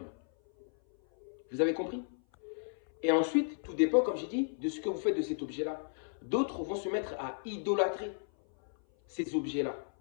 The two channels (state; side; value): silent; right; 55 dB below the other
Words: Vous avez compris? Et ensuite, tout dépend, comme j'ai dit, de ce que vous faites de cet objet-là. D'autres vont se mettre à idolâtrer ces objets-là.